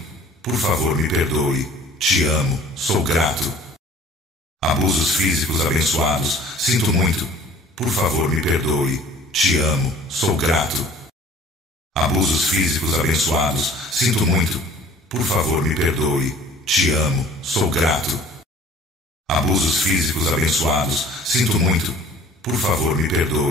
Por favor, me perdoe. Te amo, sou grato. Abusos físicos abençoados, sinto muito. Por favor, me perdoe. Te amo, sou grato. Abusos físicos abençoados, sinto muito. Por favor, me perdoe. Te amo, sou grato. Abusos físicos abençoados, sinto muito. Por favor, me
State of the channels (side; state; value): both; normal; correlation 0.50